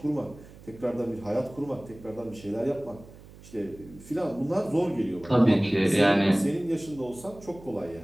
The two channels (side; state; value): right; noise; hum, 20 dB below the sound